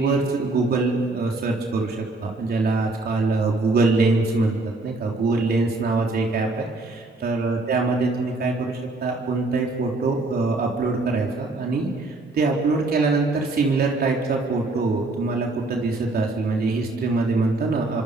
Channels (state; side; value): quieter; left; 3.1 dB